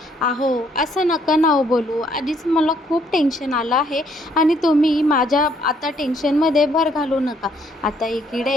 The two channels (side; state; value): both; normal; correlation 0.67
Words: अहो असं नका ना हो बोलू, आधीच मला खूप टेन्शन आलं आहे आणि तुम्ही माझ्या आता टेन्शनमध्ये भर घालू नका. आता